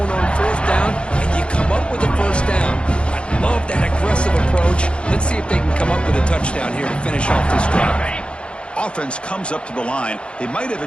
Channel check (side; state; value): right; late; 0.058 ms